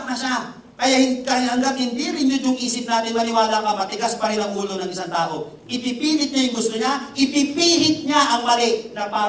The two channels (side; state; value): both; identical; correlation 1.00